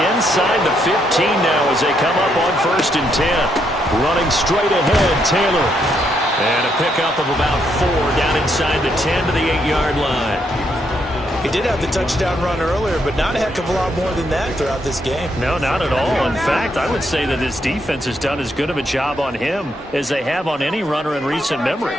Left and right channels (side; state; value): both; normal; correlation 0.76